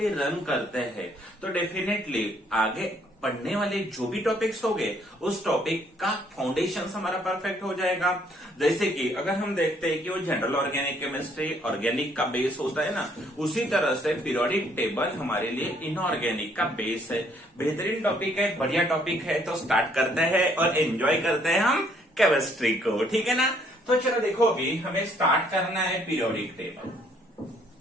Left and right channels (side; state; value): both; normal; correlation 0.65